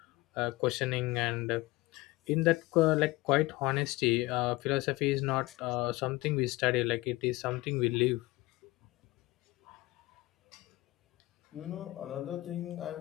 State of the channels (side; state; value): right; quieter; 20.1 dB